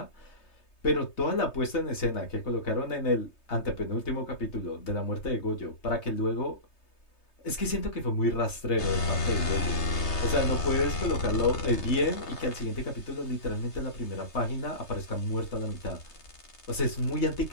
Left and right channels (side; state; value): right; late; 3.3 ms